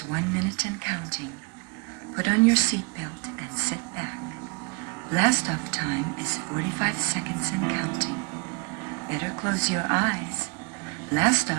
1 minute and counting. Put on your seatbelt and sit back. Last off time is 45 seconds and counting. Better close your eyes. Last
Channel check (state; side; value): quieter; left; 32.0 dB